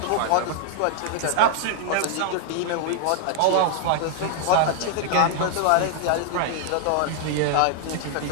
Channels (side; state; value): both; different; correlation 0.00